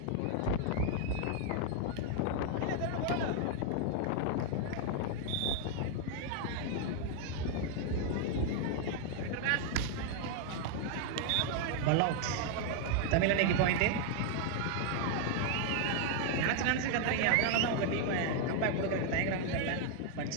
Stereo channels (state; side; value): different; both; correlation 0.00